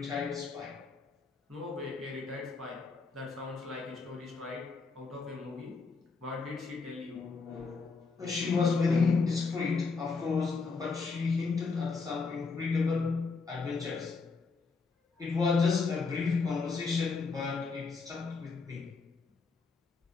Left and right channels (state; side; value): quieter; right; 4.5 dB